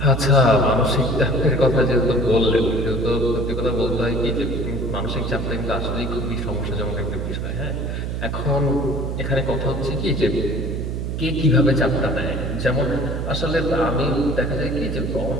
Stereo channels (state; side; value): noise; right; hum, 3 dB below the sound